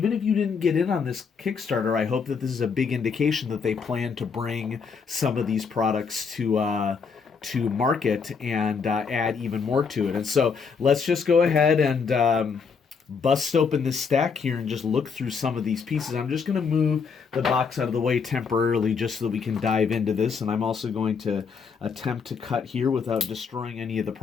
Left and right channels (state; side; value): quieter; right; 5.7 dB